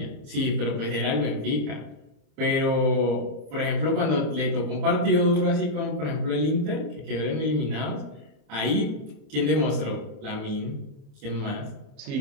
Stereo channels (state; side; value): late; left; 27 ms